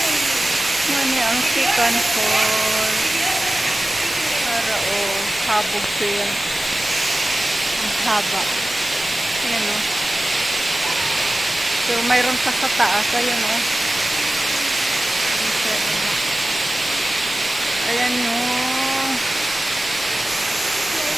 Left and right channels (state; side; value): normal; both; correlation 0.96